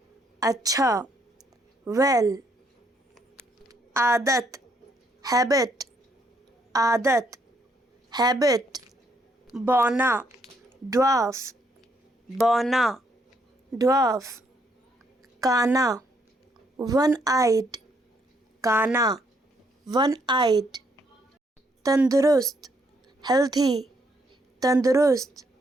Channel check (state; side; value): normal; both; correlation 0.72